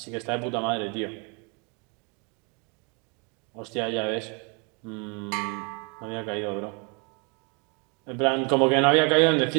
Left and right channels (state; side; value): quieter; left; 33.6 dB